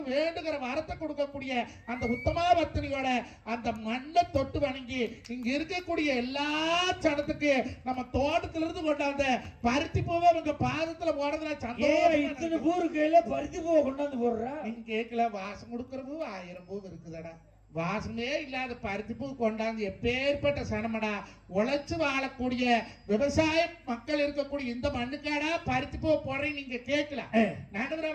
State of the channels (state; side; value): identical; both; correlation 1.00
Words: வேண்டுகிற வரத்தை கொடுக்கக்கூடிய அந்த உத்தமா பத்தினியோட அந்த மண்ணை தொட்டு வணங்கி இங்க இருக்கக்கூடிய எல்லா சனத்துக்கு நம்ம தோட்டத்துல இருந்து கொண்டாந்த பருத்தி பூவை அவங்க பாதத்துல போடுறதுல சந்தோஷம். கையில பருத்தி பூவை கொண்டாந்து போடுறா. நீங்க கேட்கல, வாசம் கொடுக்கிற பூ 1000 பூ இருக்குதடா. வாசமே இல்லாத பருத்தி பூ கொண்டாந்து எப்பேற்பட்ட சனமடா. உழைச்சு வாழக்கூடிய விவசாய மக்கள் இருக்கக்கூடிய இந்த மண்ணுக்காடா பருத்தி பூ போடுறேன். நீங்க கேட்கல நடுவர்